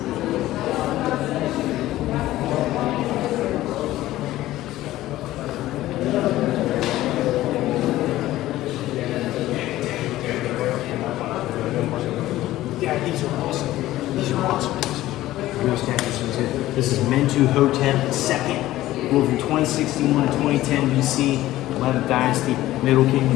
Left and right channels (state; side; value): quieter; right; 15.5 dB